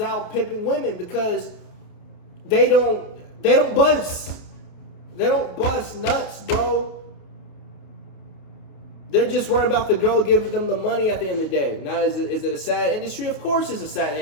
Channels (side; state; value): right; late; 29 ms